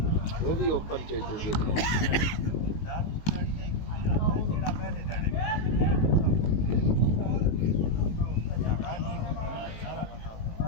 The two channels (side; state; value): right; late; 19 ms